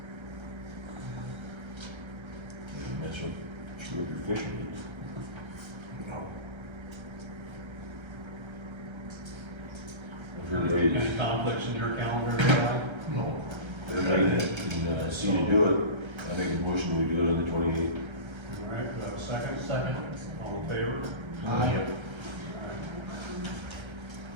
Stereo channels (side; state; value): left; late; 1.3 ms